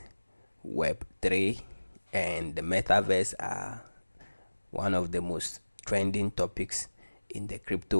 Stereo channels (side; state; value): both; inverted; correlation -1.00